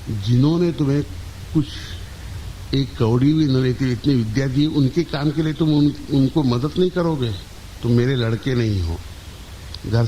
जिन्होंने तुम्हें कुछ एक कौड़ी भी न लेती इतनी विद्या दी, उनके काम के लिए तुम उनको मदद नहीं करोगे, तुम मेरे लड़के नहीं हो, घर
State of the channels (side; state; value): both; identical; correlation 1.00